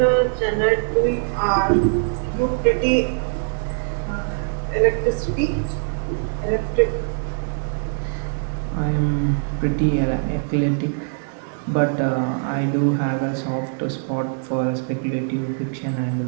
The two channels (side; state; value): left; silent; digital silence